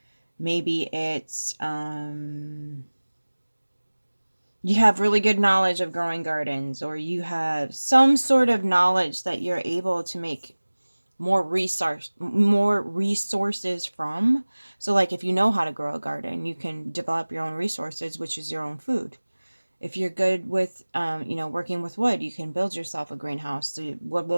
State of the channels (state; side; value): inverted; both; correlation -1.00